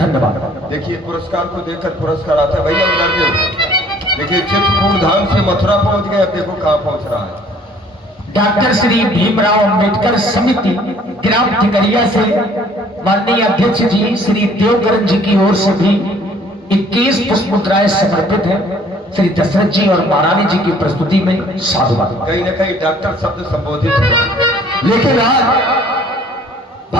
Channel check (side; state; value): both; normal; correlation 0.56